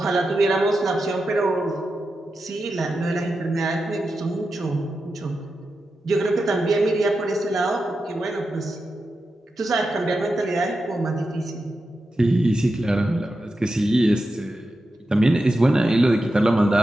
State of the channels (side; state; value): both; normal; correlation 0.90